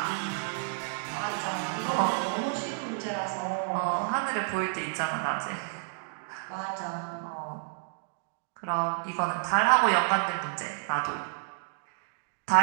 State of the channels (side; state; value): left; silent; digital silence